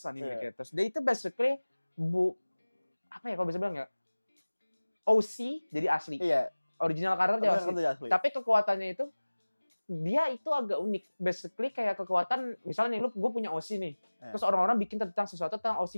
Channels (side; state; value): both; inverted; correlation -1.00